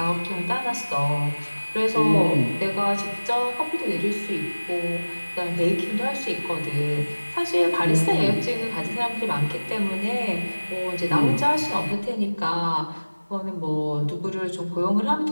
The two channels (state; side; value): inverted; both; correlation -1.00